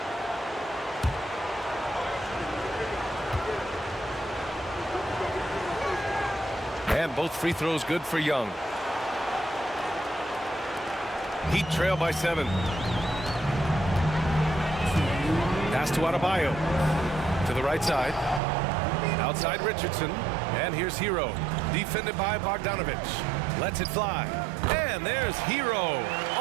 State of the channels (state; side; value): drops out; left; at 18.4 s